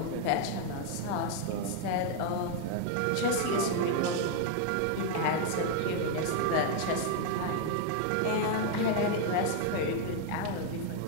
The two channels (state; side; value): different; both; correlation 0.00